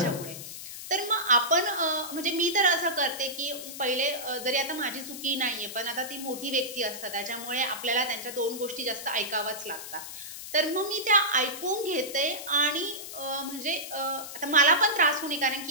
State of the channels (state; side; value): noise; left; hiss, 10 dB below the sound